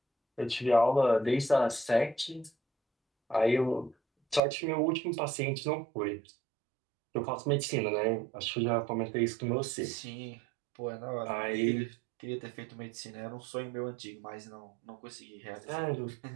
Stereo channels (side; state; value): left; drops out; at 4.4 s